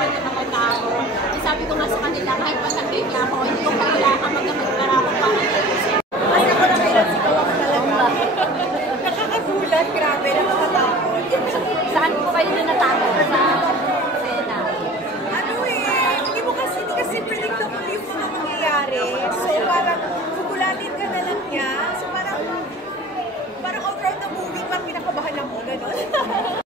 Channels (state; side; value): normal; both; correlation 0.42